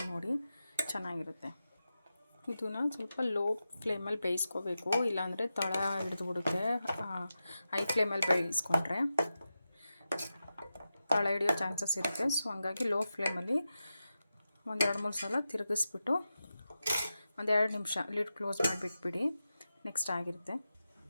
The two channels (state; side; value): inverted; both; correlation -0.91